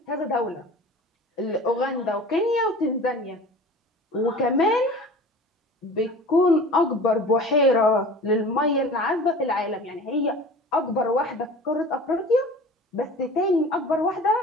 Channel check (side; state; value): both; normal; correlation 0.40